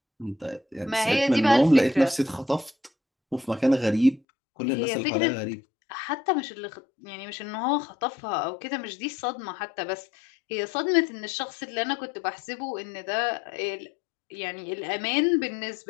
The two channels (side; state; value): right; drops out; at 4.2 s